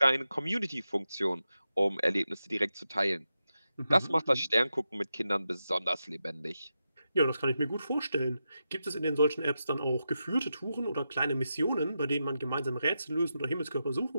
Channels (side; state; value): both; inverted; correlation -0.89